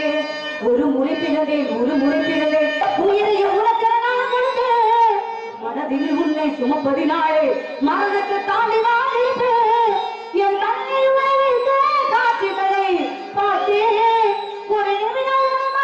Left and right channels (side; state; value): both; identical; correlation 1.00